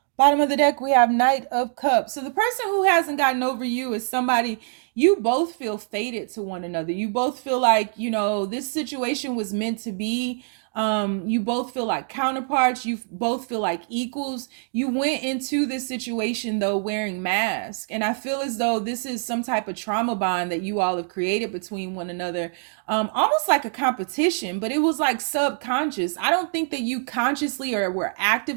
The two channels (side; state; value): left; silent; 62 dB below the other